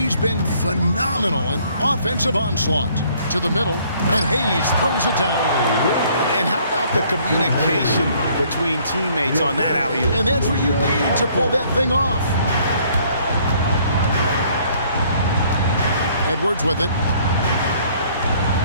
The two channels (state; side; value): inverted; both; correlation -0.61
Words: been phenomenal in offensive onslaught. To the middle, and Hayes throws it down. And how about the communication between teammates on that alley-oop? And that's what you need to pull that thing off. Edwards with it.